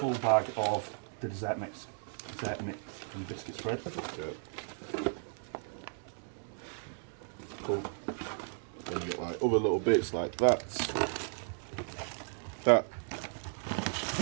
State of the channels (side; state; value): left; silent; 55 dB below the other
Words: bag of the dessert mix and biscuit spread. Yeah. Cool. Then you get like other little bits like that. That.